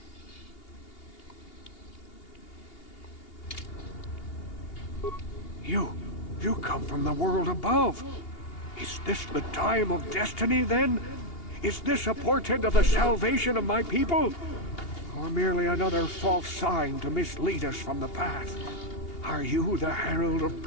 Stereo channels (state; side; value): late; right; 2.8 ms